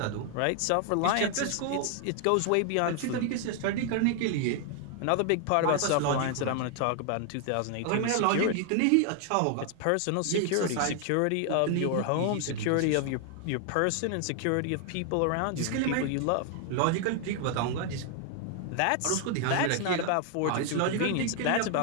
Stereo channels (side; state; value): both; different; correlation 0.00